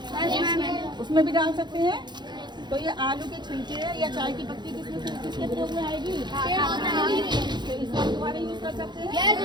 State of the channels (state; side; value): late; left; 0.21 ms